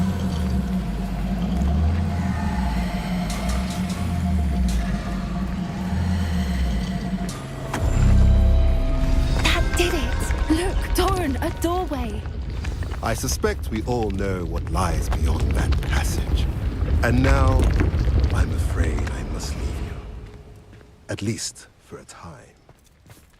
That did it! Look, Doran, a doorway. I suspect we all know what lies beyond that passage. And now, I'm afraid I must leave you. At least for a time.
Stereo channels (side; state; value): both; identical; correlation 1.00